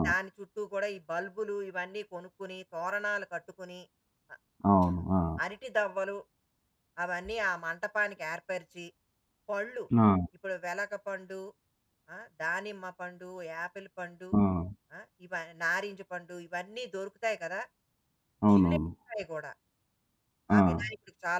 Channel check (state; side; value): identical; both; correlation 1.00